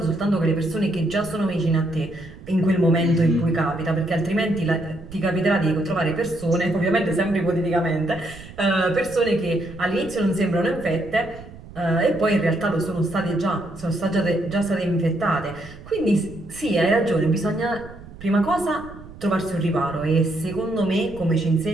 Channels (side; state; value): right; noise; rumble, 17 dB below the sound